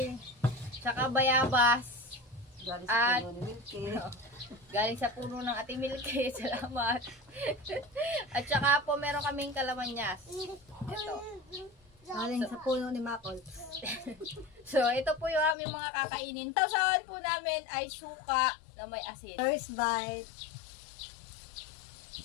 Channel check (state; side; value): drops out; right; at 15.6 s